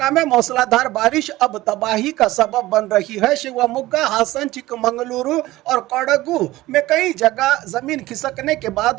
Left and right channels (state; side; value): quieter; left; 17.5 dB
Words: में मूसलाधार बारिश अब तबाही का सबब बन रही है। शिवमोगा, हासन, चिकमंगलुरु और कोडगु में कई जगह जमीन खिसकने के